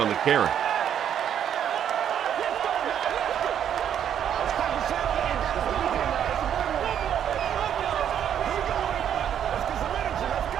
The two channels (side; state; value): left; quieter; 9.4 dB